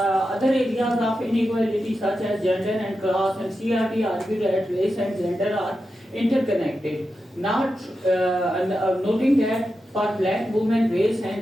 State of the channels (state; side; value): normal; both; correlation 0.89